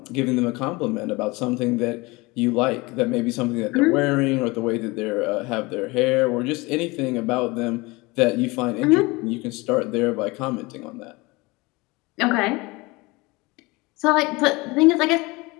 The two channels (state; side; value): quieter; right; 23.7 dB